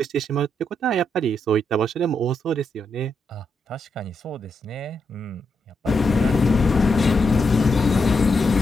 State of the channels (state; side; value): normal; both; correlation 0.82